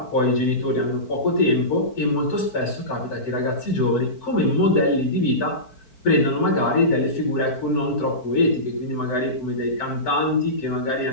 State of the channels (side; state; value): right; late; 4.5 ms